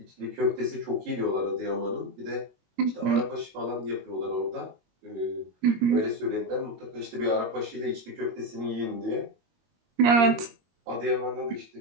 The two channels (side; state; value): left; late; 21 ms